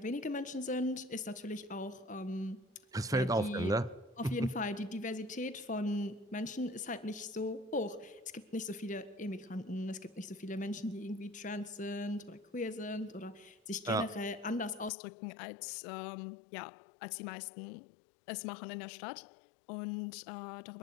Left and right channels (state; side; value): drops out; right; at 14.9 s